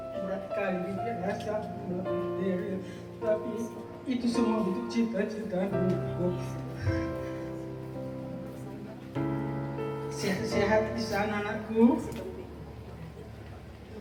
Tapi itu semua untuk cita-cita dulu. Sehat-sehat di sana anakku.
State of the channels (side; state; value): both; identical; correlation 1.00